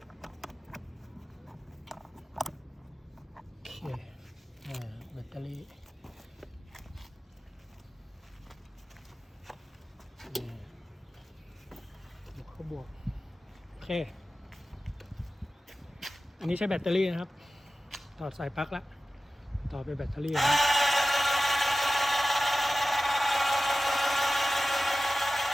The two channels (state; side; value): normal; both; correlation 0.95